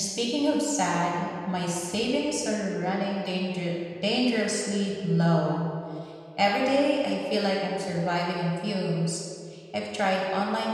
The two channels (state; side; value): identical; both; correlation 1.00